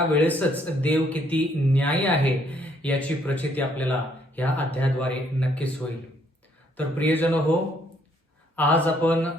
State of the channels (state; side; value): normal; both; correlation 0.68